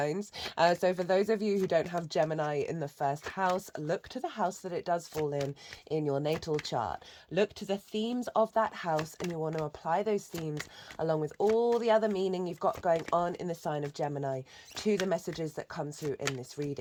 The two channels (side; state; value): both; identical; correlation 1.00